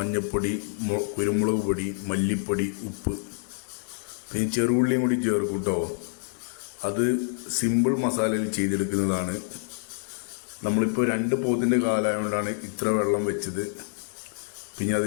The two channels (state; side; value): silent; right; digital silence